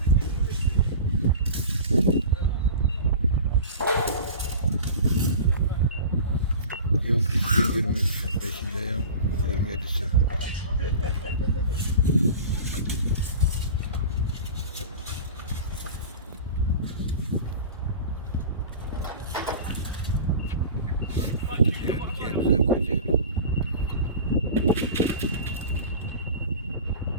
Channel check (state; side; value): inverted; both; correlation -0.35